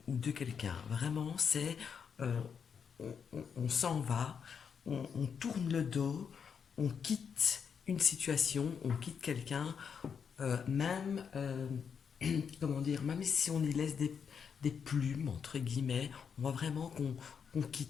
ou de quelqu'un. Vraiment, c'est euh, on s'en va, on tourne le dos, on quitte une situation, on quitte quelqu'un, même comment dire, même si on y laisse des plumes, entre guillemets, on voit vraiment qu'on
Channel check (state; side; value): quieter; right; 6.8 dB